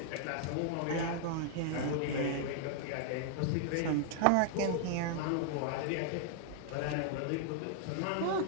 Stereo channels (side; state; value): both; different; correlation -0.01